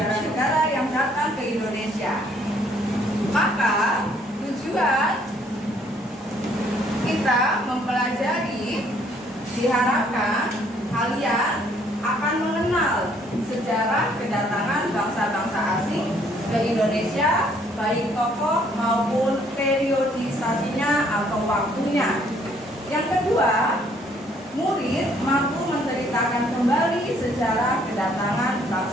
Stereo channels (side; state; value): both; normal; correlation 0.64